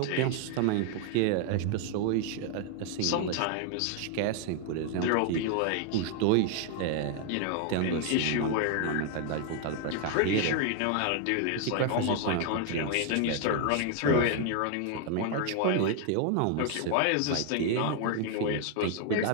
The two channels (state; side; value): different; both; correlation 0.00